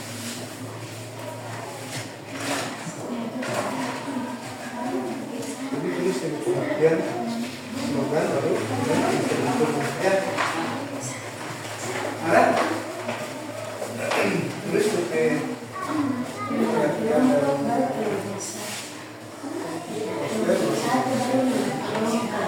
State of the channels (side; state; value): both; identical; correlation 1.00